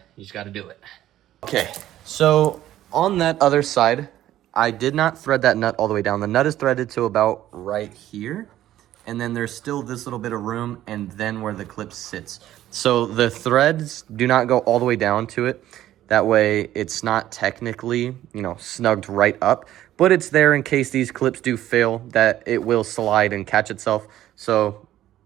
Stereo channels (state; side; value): quieter; left; 13.2 dB